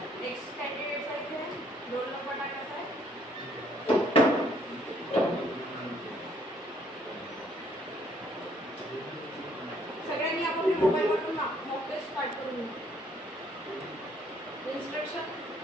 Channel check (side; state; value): both; normal; correlation 0.65